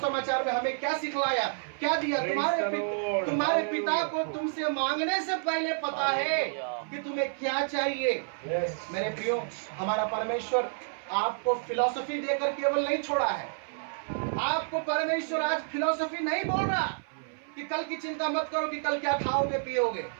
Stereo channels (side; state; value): left; silent; 57 dB below the other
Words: में हमें क्या सिखलाया, क्या दिया? तुम्हारे पिता को तुमसे मांगने से पहले पता है कि तुम्हें क्या चाहिए। मेरे प्रियो, हमारा परमेश्वर आपको फिलॉसफी देकर केवल नहीं छोड़ा है। आपको परमेश्वर आज फिलॉसफी नहीं बोल रहा कि कल की चिंता मत करो कि कल क्या खाओगे पियोगे।